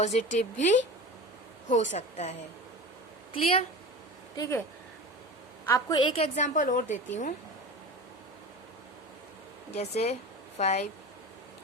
भी हो सकता है। क्लियर? ठीक है, आपको एक एग्जांपल और देती हूँ। जैसे 5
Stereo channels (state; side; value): normal; both; correlation 0.31